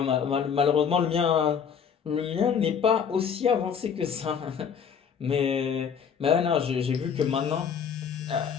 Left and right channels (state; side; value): quieter; right; 7.1 dB